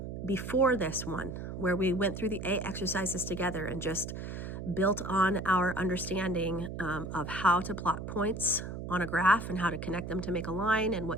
before this one, where we went through the A exercises together and just built on our understanding of how to plot points on a graph and how to connect them to make a line and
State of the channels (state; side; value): noise; right; hum, 7 dB below the sound